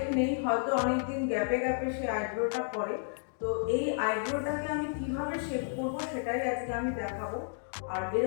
নেই, হয়তো অনেকদিন গ্যাপে গ্যাপে সে আইব্রোটা করে। তো এই আইব্রোটাকে আমি কিভাবে শেপ করব সেটাই আজকে আমি দেখাবো। আর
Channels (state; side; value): silent; right; digital silence